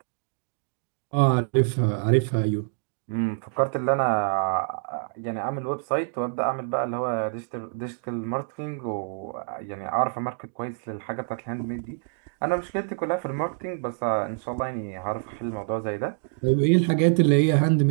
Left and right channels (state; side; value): silent; left; digital silence